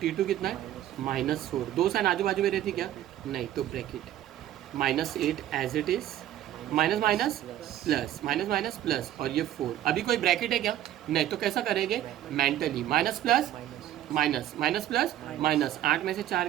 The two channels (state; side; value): quieter; left; 12.4 dB